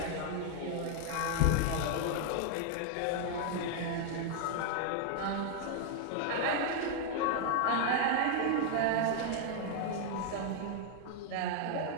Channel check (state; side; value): different; both; correlation 0.00